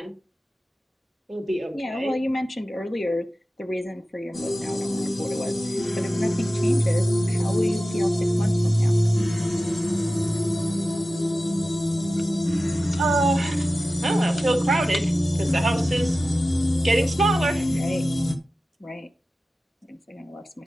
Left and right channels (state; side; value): normal; both; correlation 0.95